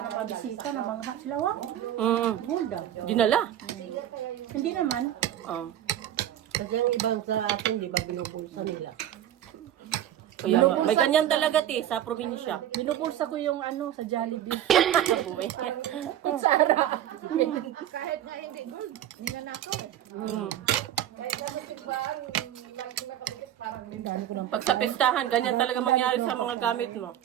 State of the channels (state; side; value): quieter; left; 11.5 dB